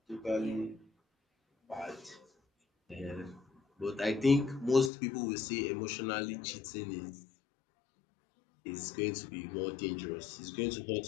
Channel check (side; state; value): right; drops out; at 4.9 s